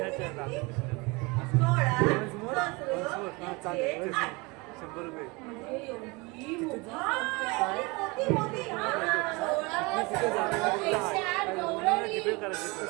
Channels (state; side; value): quieter; left; 26.3 dB